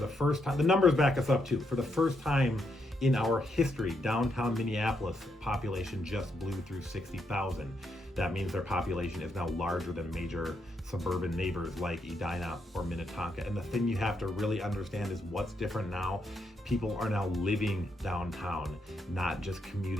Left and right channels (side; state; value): both; normal; correlation 0.79